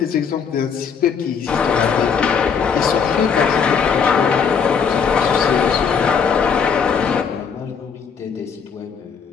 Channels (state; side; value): quieter; right; 6.4 dB